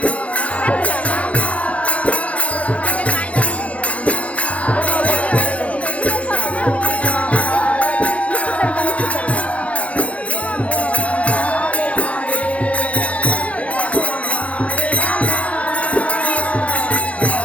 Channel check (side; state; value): right; late; 0.064 ms